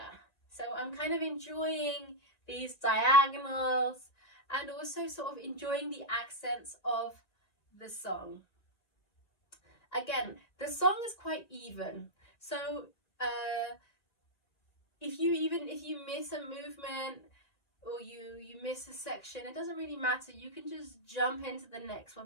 So I'm kind of enjoying these diagonals and also sort of enjoying the accents of the song. Again, the song is quite even. So if you miss a movement or you miss a section, it doesn't really matter. You can just jump into the next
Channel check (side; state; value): right; late; 2.0 ms